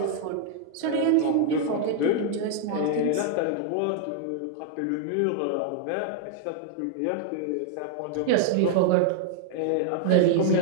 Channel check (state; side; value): different; both; correlation -0.01